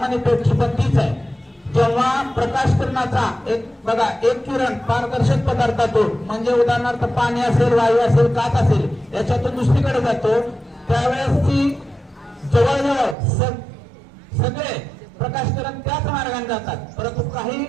पेटची पण तीच आहे. जेव्हा प्रकाश किरणाचा एक किरण पारदर्शक पदार्थातून म्हणजे उदाहरणार्थ पाणी असेल, वायू असेल, काच असेल याच्यातून दुसरीकडे जातो त्यावेळेस ती जवळजवळ सगळे प्रकाश किरण त्याच मार्गाने जातात. परंतु काही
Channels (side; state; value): left; drops out; at 13.2 s